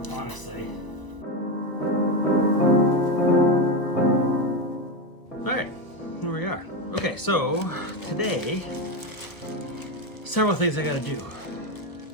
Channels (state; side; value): late; right; 1.0 ms